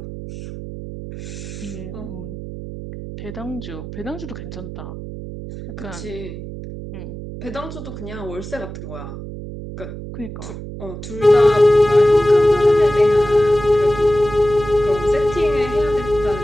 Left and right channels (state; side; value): noise; right; hum, 10 dB below the sound